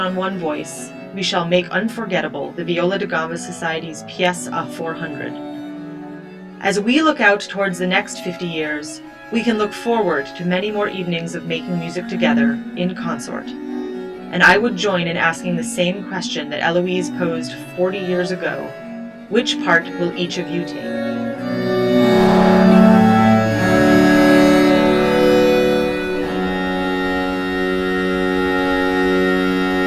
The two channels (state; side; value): identical; both; correlation 1.00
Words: one voice, we shall make unforgettable the Viola da Gamba Society's pièce à 400. As we look out towards the next 50 years, we can look forward to many more evenings of making music together, in consort. And I would join in asking the same question that Eloise posed 40 years ago. Which part will each of you take?"